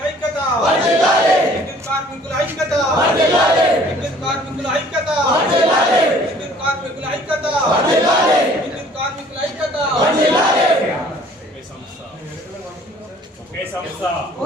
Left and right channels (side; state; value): both; normal; correlation 0.54